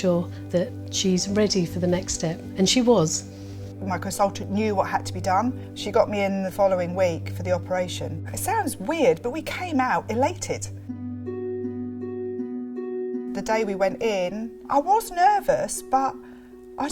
that she's ready for the next step. And she was. My consultant knew what had to be done. She got me in the following week for the operation. It sounds weird, but we came out elated. The day we went in, I was nervous, but I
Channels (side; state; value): both; identical; correlation 1.00